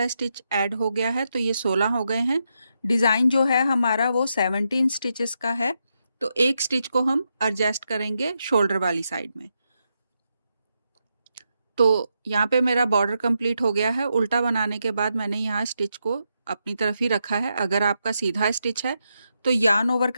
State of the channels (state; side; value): inverted; both; correlation -0.84